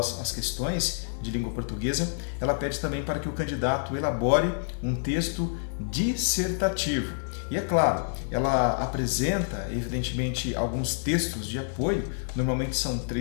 as questões de língua portuguesa, ela pede também para que o candidato elabore um texto dissertativo. E é claro, ela apresenta evidentemente alguns textos de apoio, normalmente são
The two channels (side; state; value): right; silent; digital silence